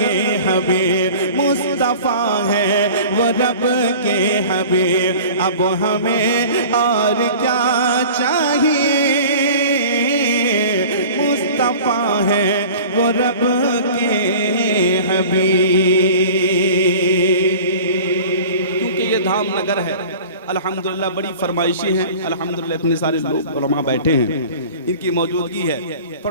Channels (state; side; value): inverted; both; correlation -0.42